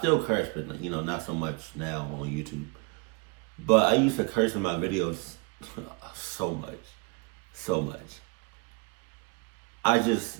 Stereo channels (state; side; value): quieter; left; 31.6 dB